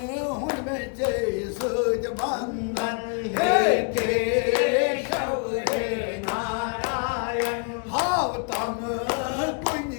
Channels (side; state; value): right; quieter; 37.0 dB